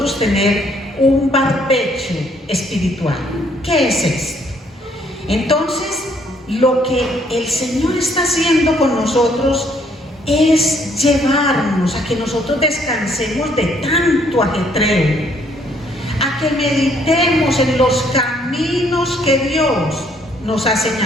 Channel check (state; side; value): normal; both; correlation 0.66